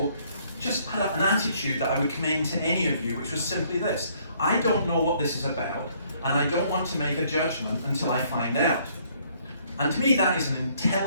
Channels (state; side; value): inverted; both; correlation -0.64